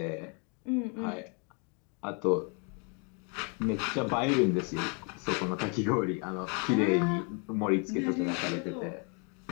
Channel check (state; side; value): quieter; right; 36.7 dB